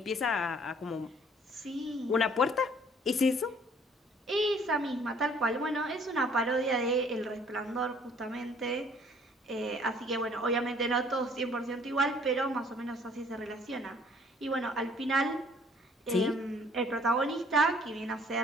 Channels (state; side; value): normal; both; correlation 0.58